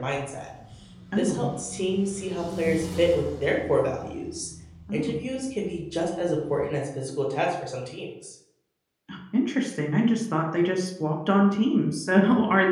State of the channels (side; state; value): both; identical; correlation 1.00